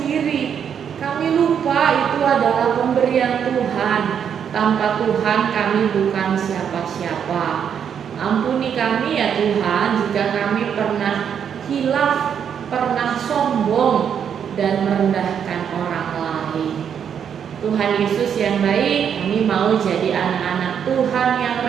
Kami lupa itu adalah pemberian Tuhan. Tanpa Tuhan kami bukan siapa-siapa. Ampuni kami ya Tuhan jika kami pernah hilaf, pernah sombong dan merendahkan orang lain. Tuhan Yesus yang baik, kami mau jadi anak-anak Tuhan yang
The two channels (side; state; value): left; quieter; 8.0 dB